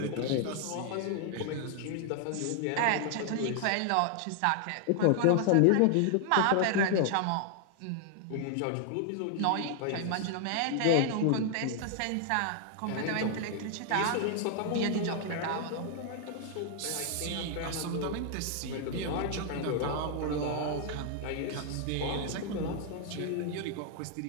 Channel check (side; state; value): both; different; correlation 0.00